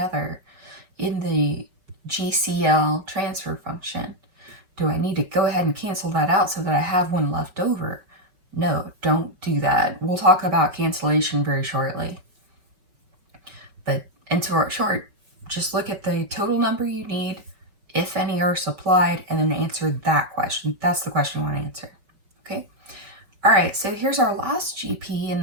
in the GCL transfer function. Do I need to go ahead and cancel that out so that I have 1 left over? No, don't do that. We'll talk about cancellation very shortly. But in short, just look at the total number you need, if any are supplied, and then answer that question. That's the question I want to answer. Okay. All right, so here's our last GP in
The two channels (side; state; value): left; late; 5.3 ms